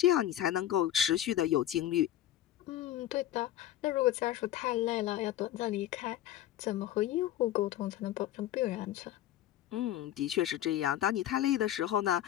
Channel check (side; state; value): right; quieter; 12.5 dB